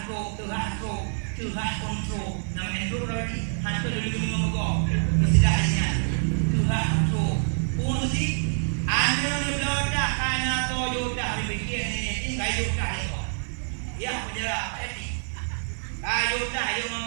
tuhah kontrol nama Andrew Rodi hantu dulu ngomong istilahnya tuhah kontrol pun si anu ni belodak kana Toyota dipikir ni Toyota ni ya penjara eti Toyota yo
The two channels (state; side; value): silent; left; digital silence